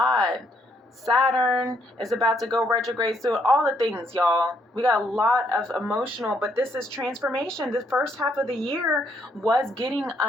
Saturn is about to go retrograde soon. All the things, y'all. We got a lot of emotional, but this is transformation. The first half of the year was getting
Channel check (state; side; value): normal; both; correlation 0.71